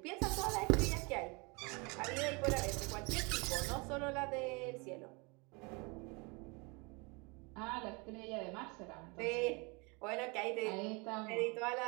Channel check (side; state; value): left; quieter; 29.4 dB